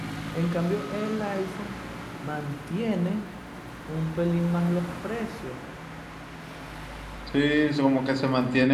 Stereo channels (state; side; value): identical; both; correlation 1.00